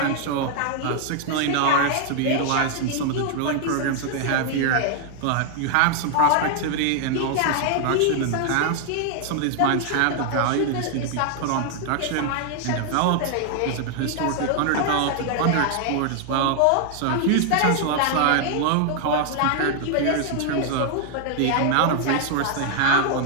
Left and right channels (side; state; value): both; different; correlation 0.00